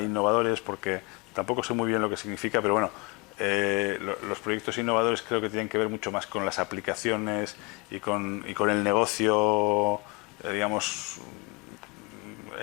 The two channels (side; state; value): right; quieter; 28.5 dB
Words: porque tampoco sé muy bien lo que significa, pero bueno, los proyectos innovadores creo que tienen que ver mucho más con las aplicaciones y con el negocio, digamos,